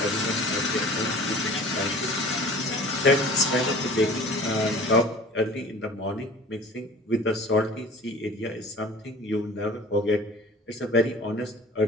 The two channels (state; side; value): normal; both; correlation 0.44